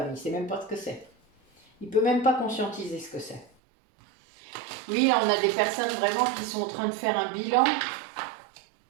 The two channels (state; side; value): drops out; left; at 3.5 s